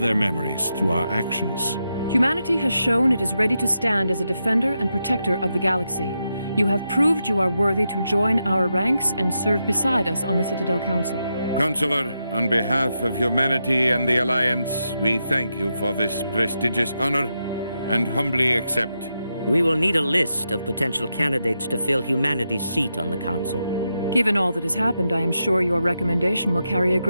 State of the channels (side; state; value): both; inverted; correlation -0.86